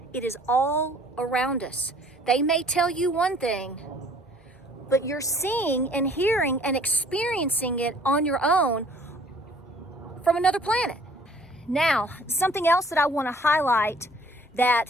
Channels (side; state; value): both; normal; correlation 0.56